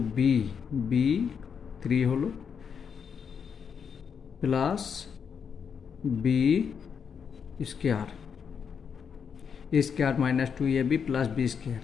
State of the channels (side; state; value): right; quieter; 6.8 dB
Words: B, B 3 হলো plus B square, A square minus 2ab plus B square,